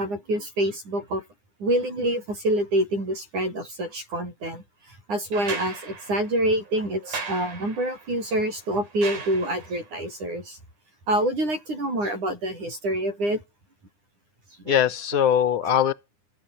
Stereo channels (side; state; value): left; late; 9.8 ms